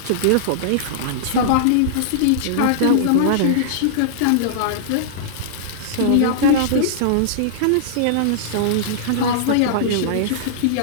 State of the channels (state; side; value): different; both; correlation -0.02